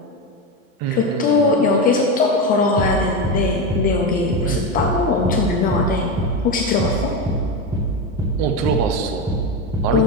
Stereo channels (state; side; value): normal; both; correlation 0.15